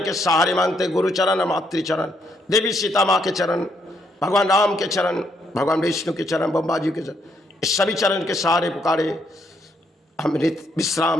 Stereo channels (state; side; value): normal; both; correlation 0.74